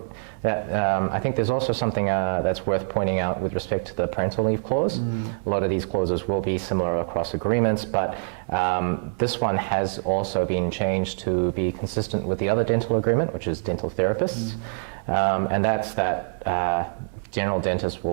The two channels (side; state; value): left; silent; digital silence